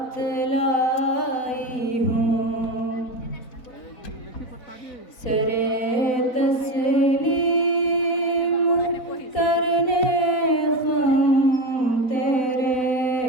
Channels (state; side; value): late; right; 4.0 ms